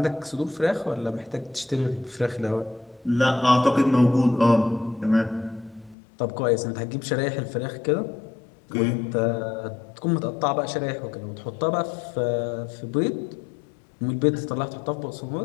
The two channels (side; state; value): right; drops out; at 6.0 s